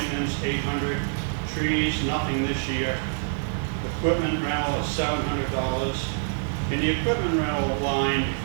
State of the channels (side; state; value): left; silent; digital silence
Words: $800. Trees, nothing this year. Equipment rental is $700. And the equipment rental line